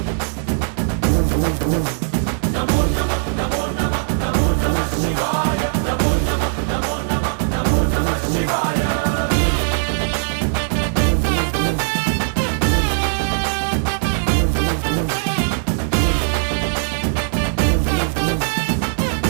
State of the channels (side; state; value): left; silent; 66 dB below the other